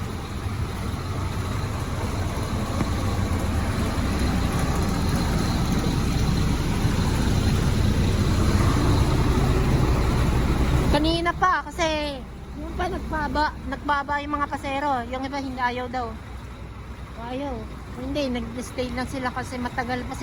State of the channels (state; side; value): identical; both; correlation 1.00